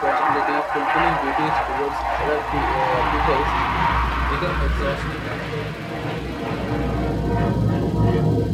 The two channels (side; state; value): both; identical; correlation 1.00